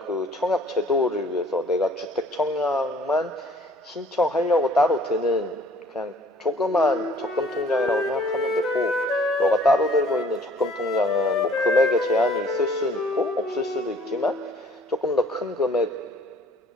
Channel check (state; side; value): normal; both; correlation 0.55